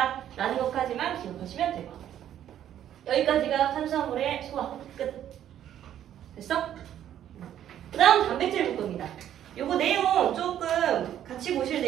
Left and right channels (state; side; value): quieter; left; 10.9 dB